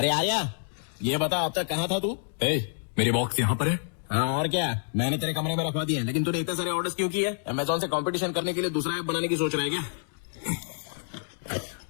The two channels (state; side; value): silent; right; digital silence